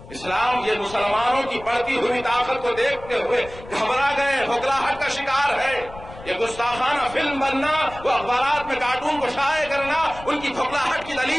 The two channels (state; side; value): noise; left; rumble, 17 dB below the sound